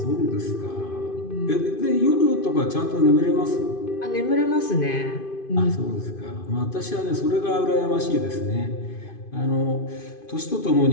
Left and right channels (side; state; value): right; late; 2.5 ms